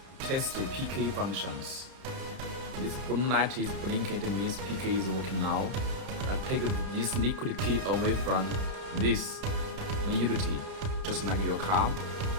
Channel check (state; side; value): late; left; 31 ms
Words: test the PK functions. This blue light is blinking, it means PK is working now. I take this liquid key away from this utility, just like your car.